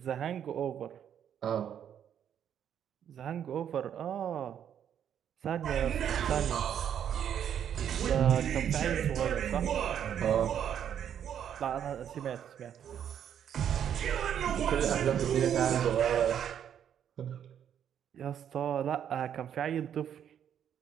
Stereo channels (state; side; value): quieter; left; 9.2 dB